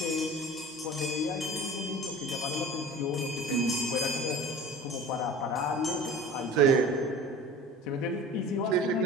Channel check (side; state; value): both; normal; correlation 0.39